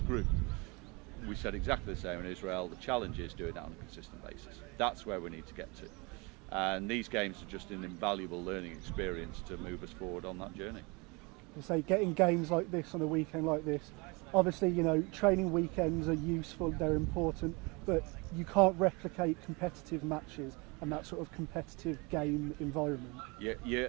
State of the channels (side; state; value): left; quieter; 28.0 dB